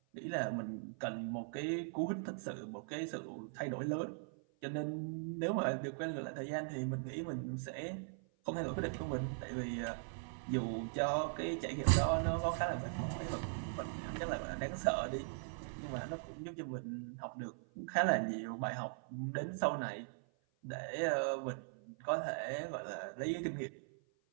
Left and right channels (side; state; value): left; silent; 51 dB below the other